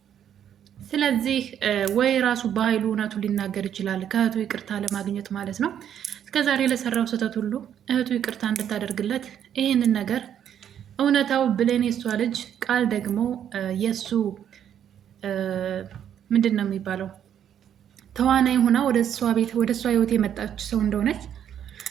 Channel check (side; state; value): left; quieter; 9.5 dB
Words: ስለዚህ ወይ ራሱ በኃይሉ እውነቱን ሊናገር ይችላል፣ ከእህቱ ይቅርታ ለማግኘት ማለት ነው። እስከዛሬ ለሰራው ስህተት ሁሉ እህቱ ይቅርታ እንድታደርግለት ይህንን ነገር እውነታው ብሌን የሷ ልጅ ቃል ደግሞ የሱ ምንድን ነው የሚባለው ተዋናይ ሆና ወደ እሷ ቤት ወደ እሷ ህይወት የመጣች ሰው እንደሆነች